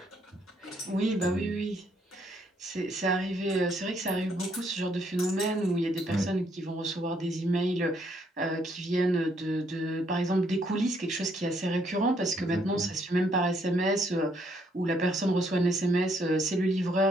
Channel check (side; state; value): both; normal; correlation 0.70